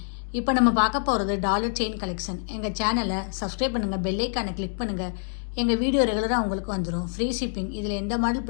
இப்போ நம்ம பார்க்க போகிறது டாலர் செயின் கலெக்ஷன். எங்கள் சேனலை சப்ஸ்கிரைப் பண்ணுங்கள், பெல் ஐக்கானை கிளிக் பண்ணுங்கள். எங்கள் வீடியோ ரெகுலராக உங்களுக்கு வந்துடும். Free shipping. இதில் எந்த மாடல்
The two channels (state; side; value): silent; right; digital silence